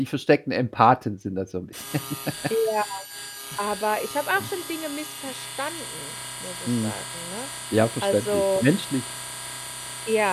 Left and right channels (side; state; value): both; identical; correlation 1.00